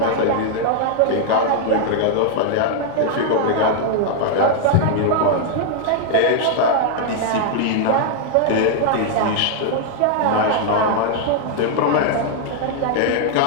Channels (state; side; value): different; both; correlation 0.00